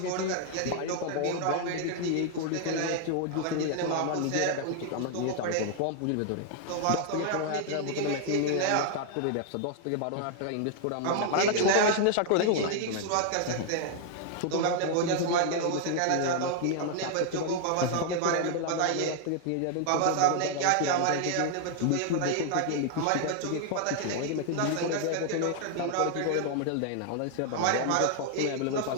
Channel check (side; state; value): both; different; correlation 0.00